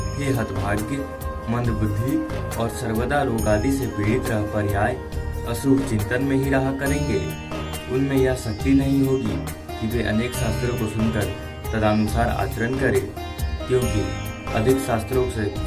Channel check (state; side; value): identical; both; correlation 1.00